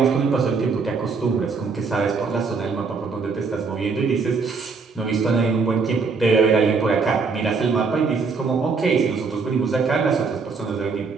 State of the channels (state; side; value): quieter; left; 4.7 dB